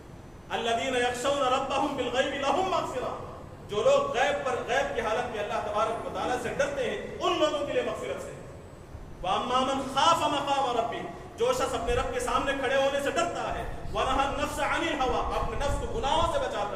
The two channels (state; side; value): identical; both; correlation 1.00